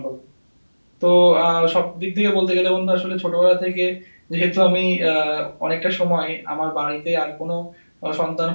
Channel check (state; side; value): inverted; both; correlation -1.00